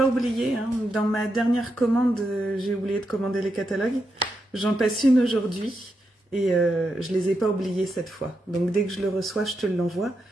oublié, hein, dans ma dernière commande, j'ai oublié de commander les catalogues. J'en passe une aujourd'hui, et je les ai pas oubliés cette fois. Donc, dès que je le reçois, je te l'envoie.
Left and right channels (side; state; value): both; normal; correlation 0.85